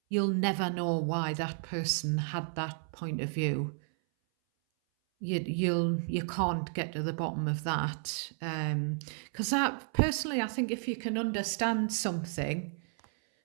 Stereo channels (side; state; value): left; silent; 56 dB below the other